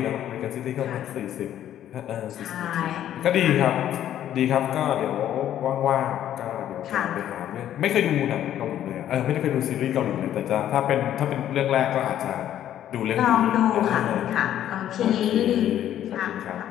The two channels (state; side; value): quieter; right; 11.3 dB